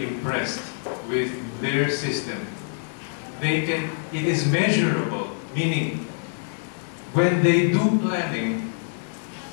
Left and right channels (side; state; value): right; silent; digital silence